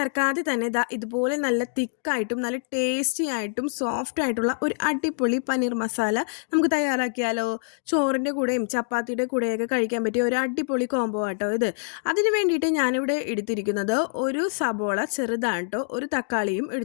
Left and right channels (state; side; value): silent; right; digital silence